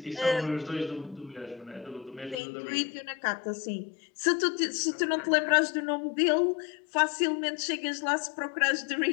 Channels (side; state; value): right; drops out; at 2.4 s